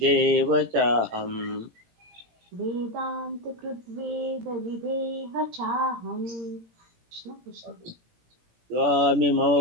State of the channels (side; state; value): left; late; 17 ms